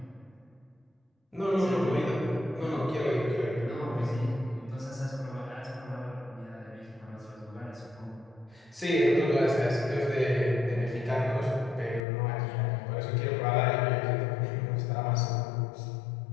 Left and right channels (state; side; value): drops out; right; at 12.0 s